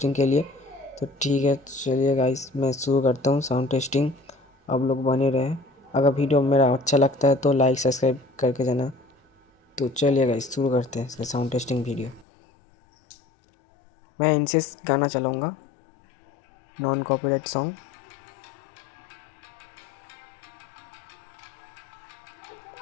के लिए। तो ठीक है, चलिए गाइस मैं शुरू करता हूँ साउंड टेस्टिंग। आप लोग बने रहें। अगर वीडियो मेरा अच्छा लगता है तो लाइक सब्सक्राइब करके जाना। तो चलिए गाइस शुरू करते हैं इसका साउंड टेस्टिंग वीडियो। मैं इनसे गाना चलाऊँगा, नॉन कॉपीराइट सॉन्ग।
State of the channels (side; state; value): right; drops out; at 12.2 s